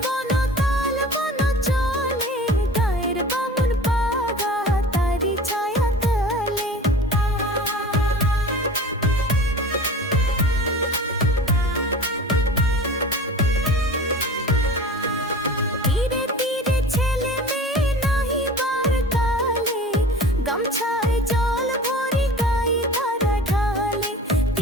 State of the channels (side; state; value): both; normal; correlation 0.39